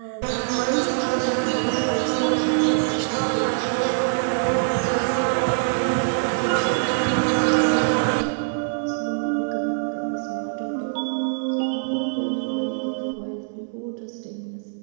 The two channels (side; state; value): left; silent; digital silence